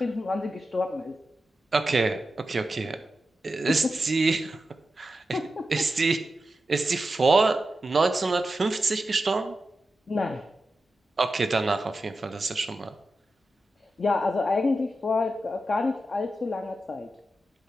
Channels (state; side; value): normal; both; correlation 0.91